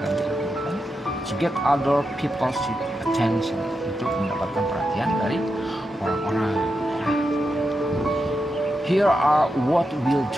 to get other people's attention, untuk mendapatkan perhatian dari orang-orang. Here are what we'll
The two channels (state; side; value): normal; both; correlation 0.87